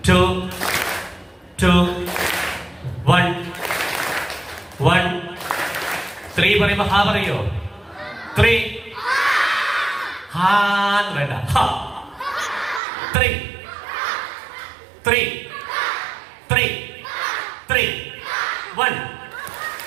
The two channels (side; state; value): left; drops out; at 12.8 s